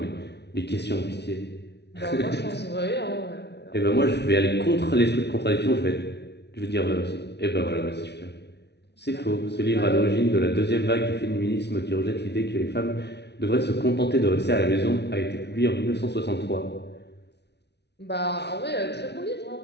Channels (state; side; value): late; right; 0.49 ms